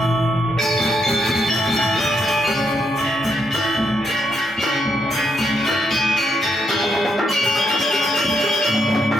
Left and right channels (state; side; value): normal; both; correlation 0.79